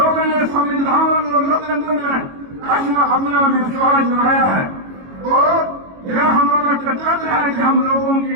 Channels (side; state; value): left; late; 22 ms